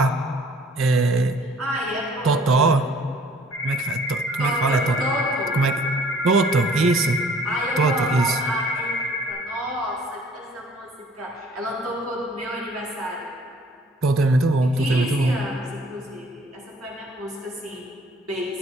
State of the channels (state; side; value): normal; both; correlation 0.55